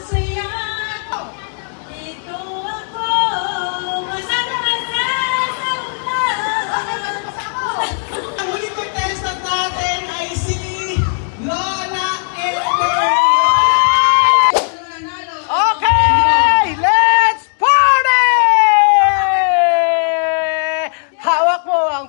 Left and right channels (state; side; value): silent; right; digital silence